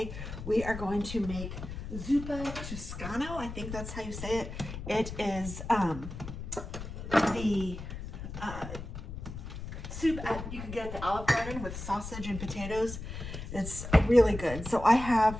we are going to make Zuppa Toscana. I think that's how you say it. It is the soup you can get at the Olive Garden with sausage and potatoes. It's really good. So I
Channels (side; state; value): left; noise; rumble, 9 dB below the sound